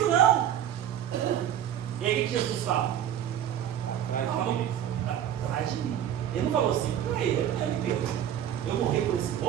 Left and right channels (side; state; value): left; quieter; 10.4 dB